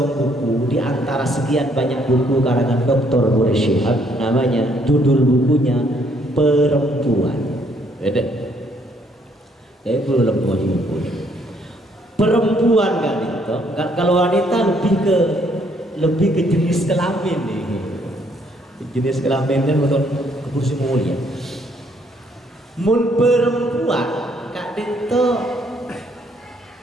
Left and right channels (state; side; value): normal; both; correlation 0.68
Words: buku di antara sekian banyak buku karangan Dr. Boris Shihab, namanya judul bukunya Perempuan. Beda. Belum buku. Perempuan kan itu. Kalau wanita lebih ke jenis kelamin nih. Jenis kelamin kan untuk kursi mulia. Mun perempuan kak itu